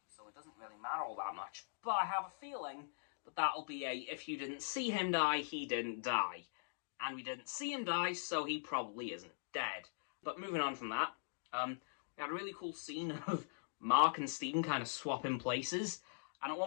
so it doesn't really matter all that much. But I have a feeling that that'll be if you didn't see him die, he didn't die. And we didn't see him die, so he probably isn't dead. But moving on from that, we had a really cool scene of Mark and Stephen kind of swapping places. And at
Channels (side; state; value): right; silent; digital silence